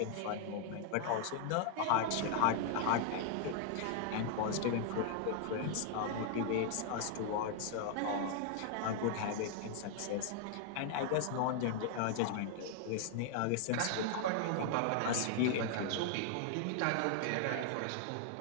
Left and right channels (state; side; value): different; both; correlation 0.00